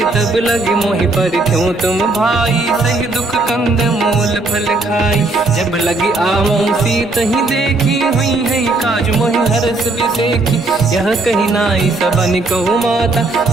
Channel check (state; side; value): quieter; left; 3.1 dB